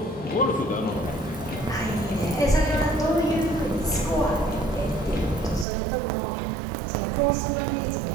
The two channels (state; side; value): drops out; left; at 5.7 s